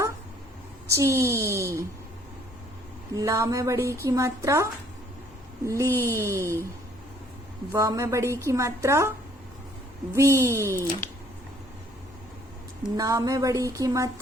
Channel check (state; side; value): normal; both; correlation 0.60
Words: ची, ला में बड़ी की मात्रा ली, व में बड़ी की मात्रा वी, ना में बड़ी की